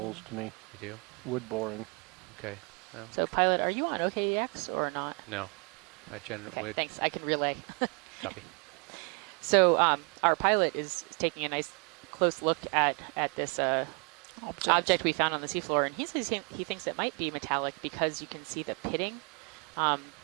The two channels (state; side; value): quieter; left; 35.4 dB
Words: to me. You do? Wood boring. Okay. Well, so, pilot, are you on OKEX or not? No. I okay, thanks. I can relay. Copy. So, our pilot is taking a nice close look at this object we found on the seafloor, and he says he thinks it might be metallic because you can see the pitting.